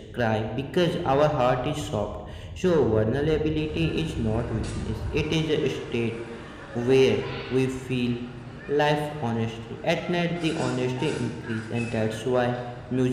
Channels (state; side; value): identical; both; correlation 1.00